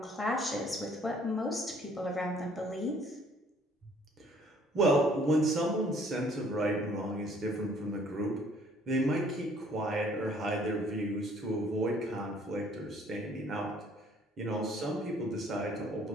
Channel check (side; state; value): both; normal; correlation 0.60